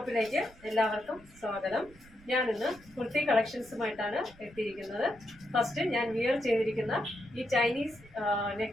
എല്ലാവർക്കും സ്വാഗതം. ഞാൻ ഇന്ന് കുർത്തി കളക്ഷൻസുമായിട്ടാണ് എത്തിയിരിക്കുന്നത്. ഫസ്റ്റ് ഞാൻ വിയർ ചെയ്തിരിക്കുന്ന ഈ ചൈനീസ്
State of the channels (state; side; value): noise; right; rumble, 24 dB below the sound